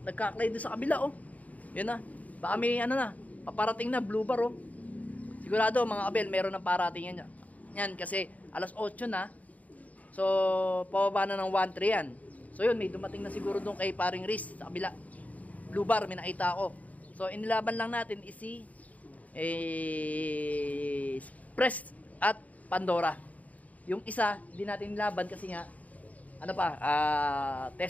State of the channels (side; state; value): right; late; 0.072 ms